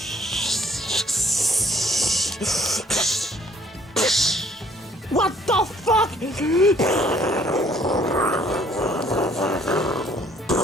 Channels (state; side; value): normal; both; correlation 0.61